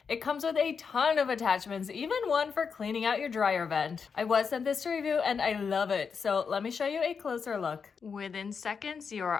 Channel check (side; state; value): right; quieter; 5.9 dB